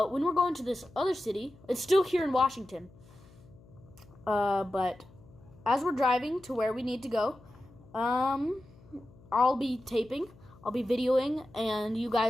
when we're going to this other city, it's still here in Washington. But as we're driving to where we need to go, I'll be taping, I'll be videoing, and you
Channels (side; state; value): left; noise; hum, 24 dB below the sound